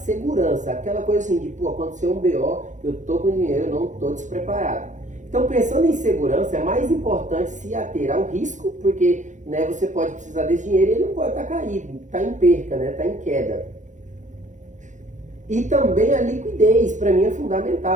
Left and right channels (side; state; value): left; late; 0.36 ms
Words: Aquela coisa assim de, pô, aconteceu um BO, eu tô com dinheiro, eu não tô despreparado. Então, pensando em segurança, é mais importante se ater ao risco, porque, né, você pode precisar desse dinheiro e ele não pode estar caído, está em perca, né, está em queda. E também a liquidez, para mim, é